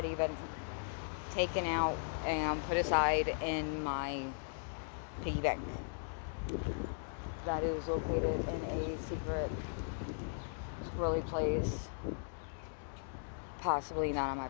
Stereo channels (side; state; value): right; silent; digital silence